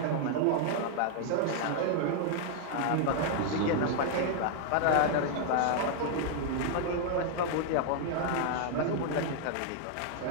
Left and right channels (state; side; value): different; both; correlation 0.00